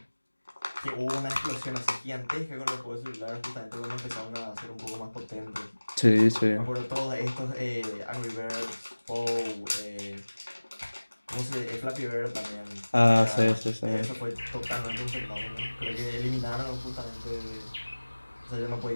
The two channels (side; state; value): both; inverted; correlation -1.00